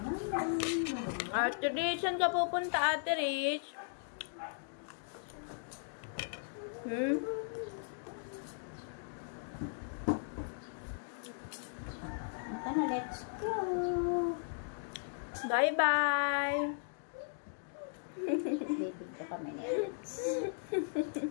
Ate Rich, saan ka pupunta, Ate Rich? Ito na, let's go. Bye-bye. Bibig ko kami ni Alex.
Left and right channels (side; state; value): right; silent; digital silence